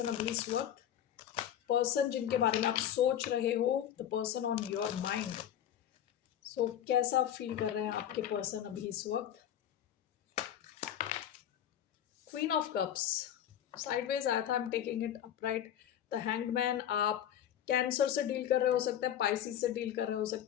अभी इस वक्त? पर्सन जिनके बारे में आप सोच रहे हो, the person on your mind. So कैसा फील कर रहे हैं आपके पर्सन अभी इस वक्त? क्वीन ऑफ कप्स साइडवेज आया था। I am taking it upright. The hangman, आप कैंसर से डील कर रहे हो सकते हैं, पाइसिस से डील कर रहे हो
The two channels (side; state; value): right; quieter; 10.3 dB